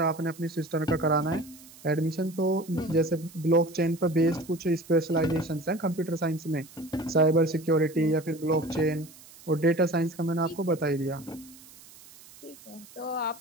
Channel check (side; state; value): right; noise; hiss, 21 dB below the sound